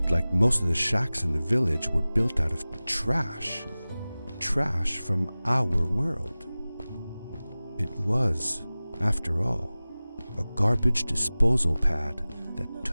like most of the shacks in the village were built out of trash. Trash from our world. It was, after all, a garbage disposal pad that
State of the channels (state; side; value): inverted; both; correlation -0.98